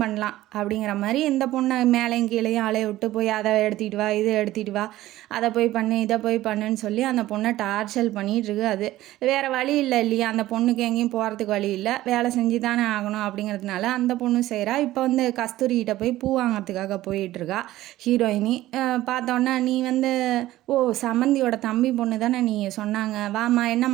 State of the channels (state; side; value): quieter; left; 15.5 dB